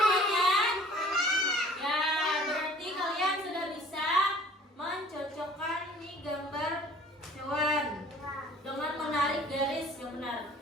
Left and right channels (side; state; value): both; normal; correlation 0.51